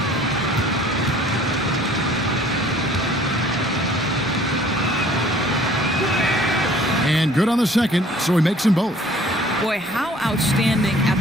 And good on the second, so he makes them both. Boy, how outstanding at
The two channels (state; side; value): normal; both; correlation 0.54